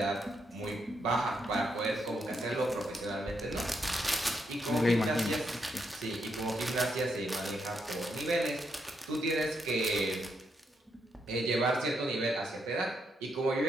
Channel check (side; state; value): both; normal; correlation 0.79